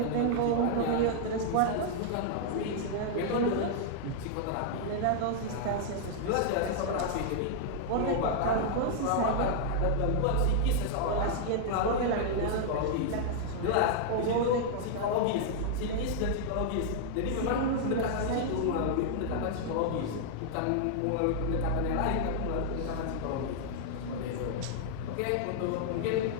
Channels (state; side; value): different; both; correlation -0.01